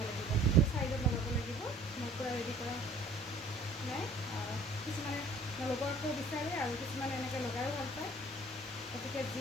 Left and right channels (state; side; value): normal; both; correlation 0.53